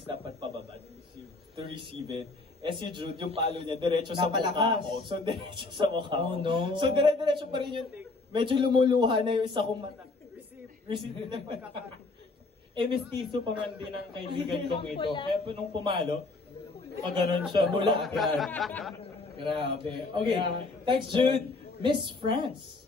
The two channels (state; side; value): quieter; right; 3.5 dB